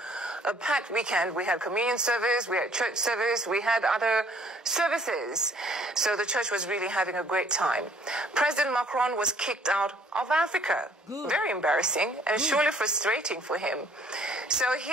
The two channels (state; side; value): normal; both; correlation 0.59